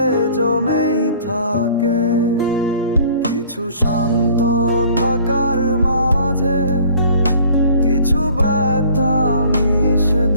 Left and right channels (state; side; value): inverted; both; correlation -0.52